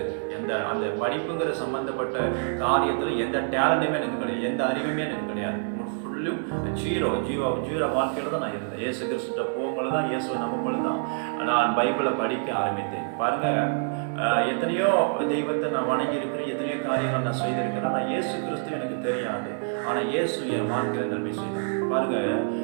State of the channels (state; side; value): silent; left; 60 dB below the other